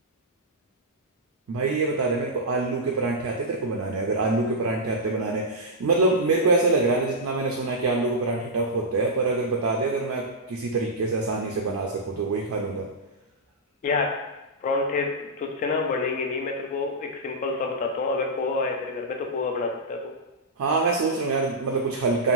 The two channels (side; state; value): both; normal; correlation -0.10